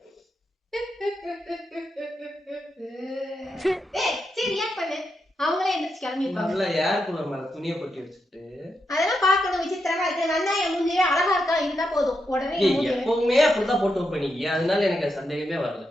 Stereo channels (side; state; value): both; normal; correlation 0.84